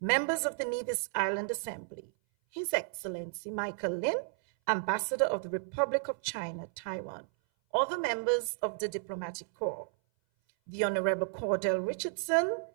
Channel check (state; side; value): silent; left; 56 dB below the other